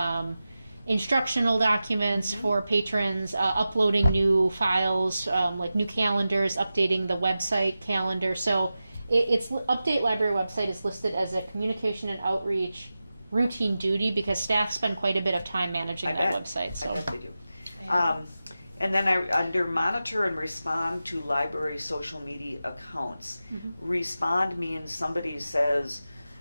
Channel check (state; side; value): inverted; both; correlation -0.93